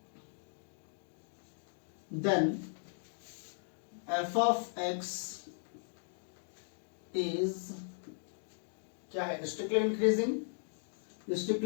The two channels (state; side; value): silent; right; digital silence